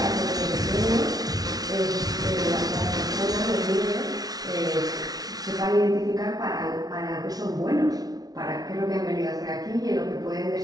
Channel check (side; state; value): left; late; 0.19 ms